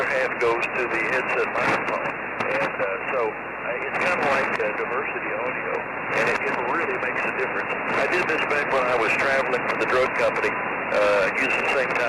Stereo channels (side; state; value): both; identical; correlation 1.00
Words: half goes to the headset microphone. And so it's kind of like diversity audio, and it really makes a difference. I did this back when I was traveling for the drug company, using the same